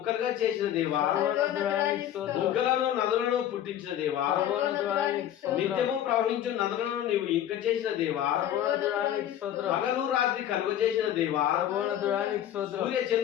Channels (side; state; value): right; quieter; 11.1 dB